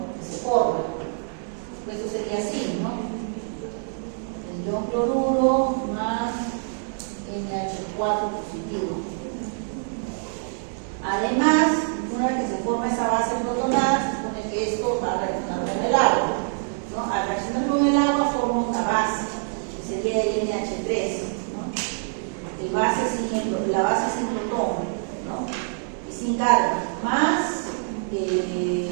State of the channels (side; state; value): left; silent; digital silence